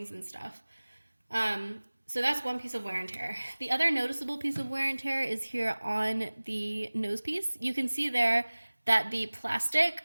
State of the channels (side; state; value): both; inverted; correlation -1.00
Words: and stuff. So that's one piece of wear and tear. The other noticeable piece of wear and tear is here on the nose piece. You can see there that the plastic